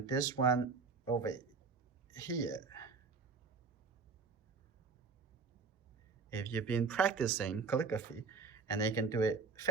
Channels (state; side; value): quieter; left; 4.8 dB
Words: this one over here. If you've been practicing calligraphy, and they can do it